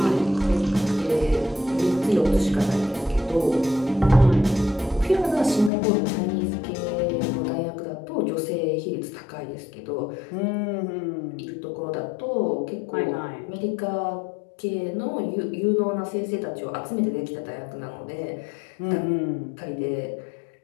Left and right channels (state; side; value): drops out; right; at 5.7 s